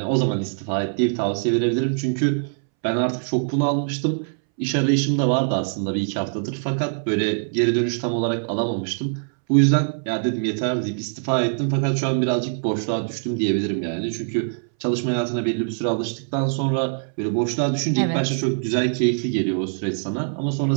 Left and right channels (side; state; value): left; silent; 63 dB below the other